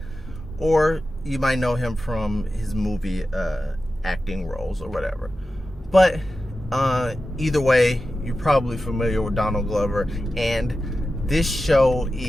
or you might know him from his movie acting roles or whatever. But either way, you're probably familiar with Donald Glover, and this show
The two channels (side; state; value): both; normal; correlation 0.93